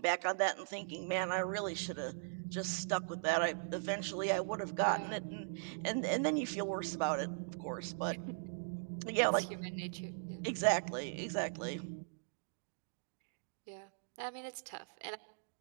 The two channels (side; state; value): left; silent; digital silence